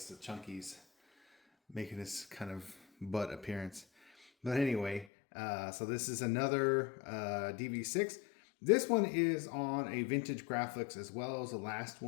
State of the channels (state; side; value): drops out; right; at 5.1 s